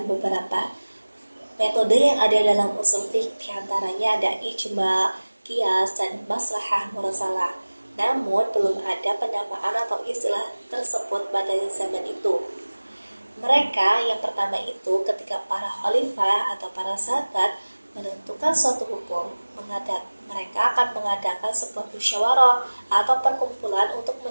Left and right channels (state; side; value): inverted; both; correlation -1.00